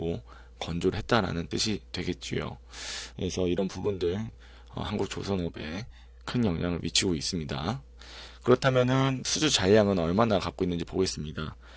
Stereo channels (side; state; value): both; identical; correlation 1.00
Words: 건조를 했다라는 뜻이 되겠지요. 그래서 이런 부분들 한국 조선업에 큰 영향을 미치고 있습니다. 그렇다면은 수주 잔량은 얼마나 갖고 있는지 보겠습니다.